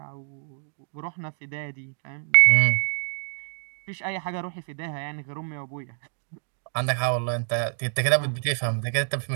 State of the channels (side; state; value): left; silent; 61 dB below the other